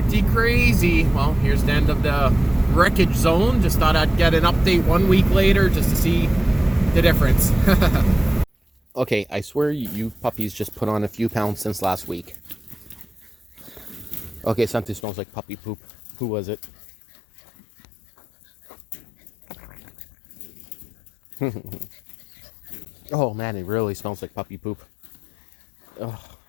crazy. Well, here's the end of the wreckage zone. Just thought I'd get an update 1 week later just to see the difference. Okay, I swear you puppies just put on a few pounds since last week. Okay, something smells like puppy poop. Who was it? Oh man, it really smells like puppy poop. Oh,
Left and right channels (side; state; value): right; drops out; at 15.0 s